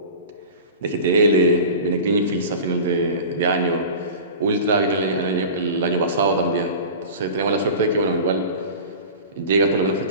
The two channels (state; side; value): inverted; both; correlation -0.35